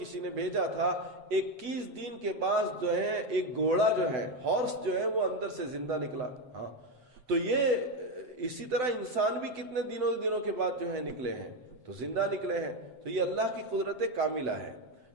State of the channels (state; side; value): late; left; 8.0 ms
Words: نے بھیجا تھا 21 دن کے بعد جو ہے ایک گھوڑا جو ہے، ہارس جو ہے، وہ اندر سے زندہ نکلا۔ تو یہ اسی طرح انسان بھی کتنے دنوں کے بعد جو ہے نکلے ہیں، تو زندہ نکلے ہیں۔ تو یہ اللہ کی قدرت کاملہ ہے۔